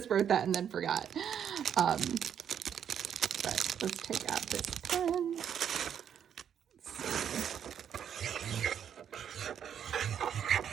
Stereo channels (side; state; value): left; quieter; 8.7 dB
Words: wrote that and then forgot. But let's take out this pen.